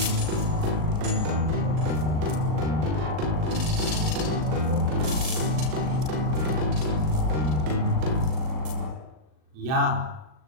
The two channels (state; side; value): late; left; 39 ms